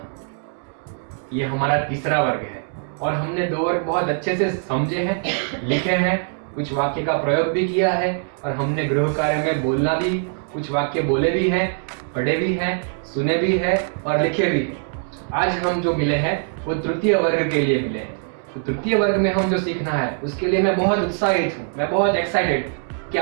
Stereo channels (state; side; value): silent; left; 64 dB below the other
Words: ये हमारा तीसरा वर्ग है और हमने 2 वर्ग बहुत अच्छे से समझे हैं, लिखे हैं, कुछ वाक्य का प्रयोग भी किया है और हमने गृह कार्य में बोलना भी, कुछ वाक्य बोले भी हैं, पढ़े भी हैं, सुने भी हैं और लिखे भी हैं। आज हम जो मिले हैं वो तृतीय वर्ग के लिए मिले हैं। तो तृतीय वर्ग में हम जो सीखना है उसके लिए मैं बहुत उत्साहित हूँ, मैं बहुत एक्साइटेड।